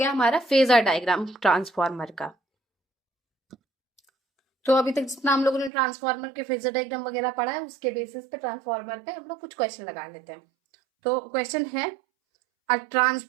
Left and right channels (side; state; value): left; drops out; at 5.7 s